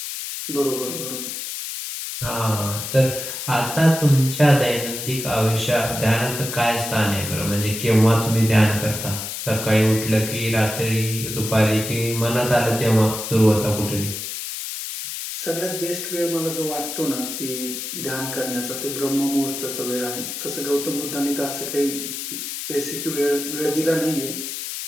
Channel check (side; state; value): left; noise; hiss, 6 dB below the sound